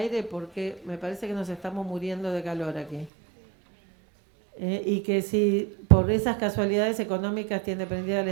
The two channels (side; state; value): left; drops out; at 3.1 s